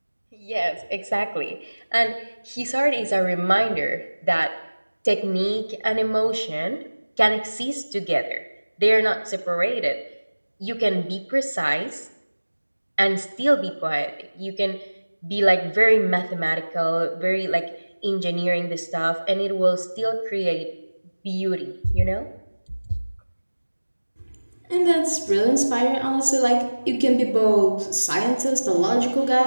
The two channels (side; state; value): both; inverted; correlation -1.00